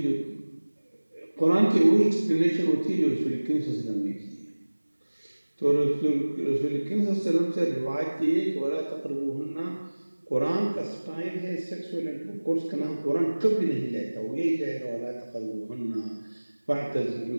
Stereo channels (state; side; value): inverted; both; correlation -1.00